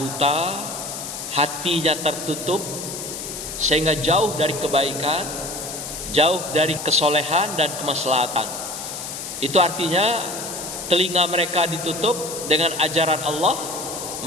hatinya tertutup, sehingga jauh dari kebaikan, jauh dari kesolehan dan kemaslahatan, itu artinya telinga mereka ditutup dengan ajaran Allah,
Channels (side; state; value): left; noise; hiss, 8 dB below the sound